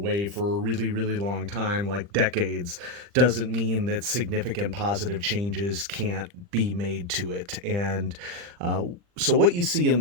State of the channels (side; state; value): left; late; 40 ms